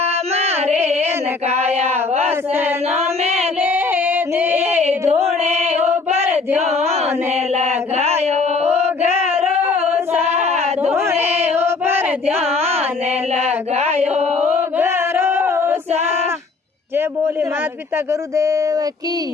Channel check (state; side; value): quieter; right; 4.1 dB